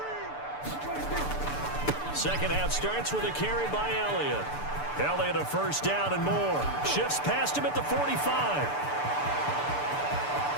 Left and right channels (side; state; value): right; late; 6.8 ms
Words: Second half starts with a carry by Elliott. Elliott a first down and more. Shifts past him at the 45.